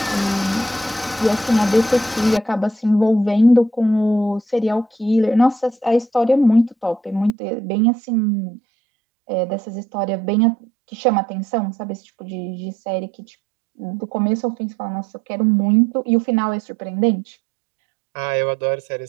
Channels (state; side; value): drops out; left; at 7.4 s